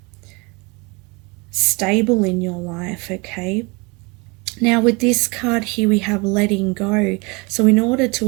stable in your life, okay? Now with this card here, we have letting go. So in order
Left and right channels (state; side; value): quieter; left; 27.9 dB